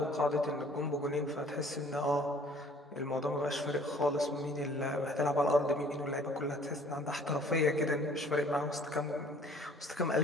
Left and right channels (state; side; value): normal; both; correlation 0.54